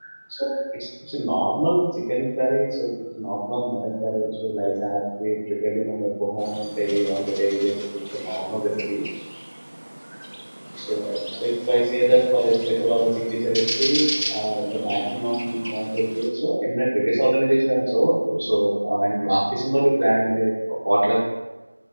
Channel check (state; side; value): inverted; both; correlation -1.00